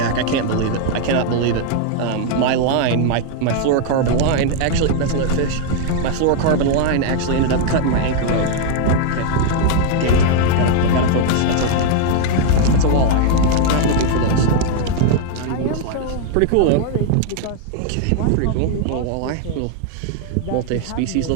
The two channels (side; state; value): both; different; correlation 0.00